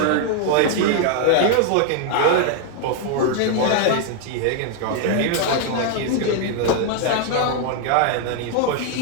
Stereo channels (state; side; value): different; both; correlation 0.00